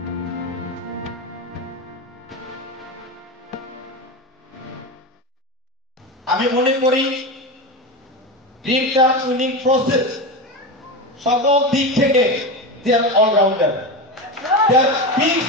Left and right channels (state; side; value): normal; both; correlation 0.19